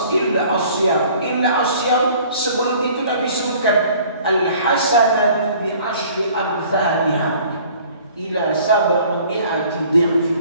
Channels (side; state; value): both; inverted; correlation -0.52